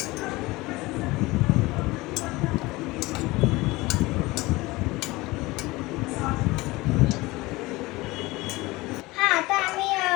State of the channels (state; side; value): quieter; right; 21.2 dB